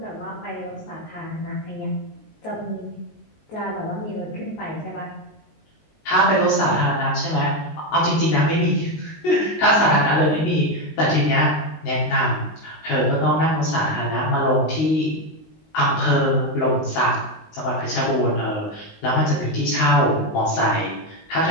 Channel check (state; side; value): late; right; 19 ms